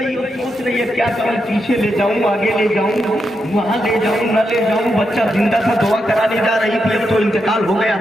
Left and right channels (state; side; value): normal; both; correlation 0.84